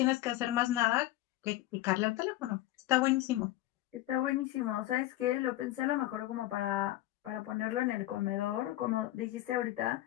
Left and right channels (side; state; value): right; quieter; 16.0 dB